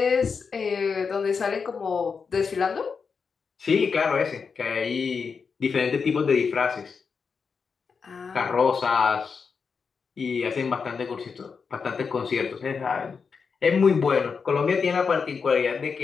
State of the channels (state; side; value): quieter; right; 5.6 dB